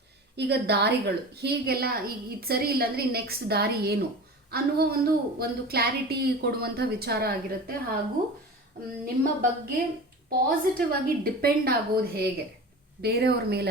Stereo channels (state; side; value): normal; both; correlation 0.34